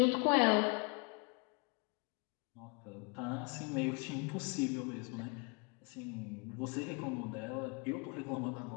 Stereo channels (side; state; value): right; quieter; 33.3 dB